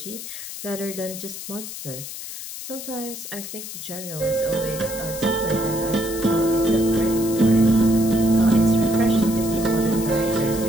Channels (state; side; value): noise; left; hiss, 10 dB below the sound